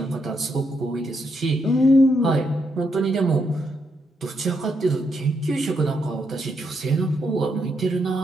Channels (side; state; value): both; normal; correlation 0.79